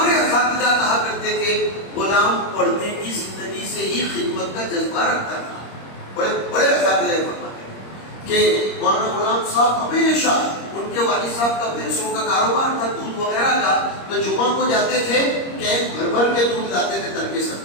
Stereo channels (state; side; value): late; right; 26 ms